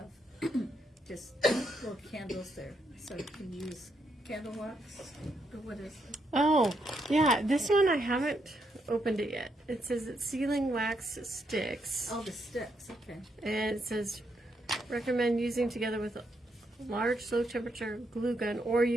just little candles there, so you can use candle wax, or what is it? Oh, yeah, this one I haven't opened it yet. It says it's sealing wax sticks. Oh, the sticks, okay. And it says recommend using together with a large low temperature glue gun, or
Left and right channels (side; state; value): both; normal; correlation 0.78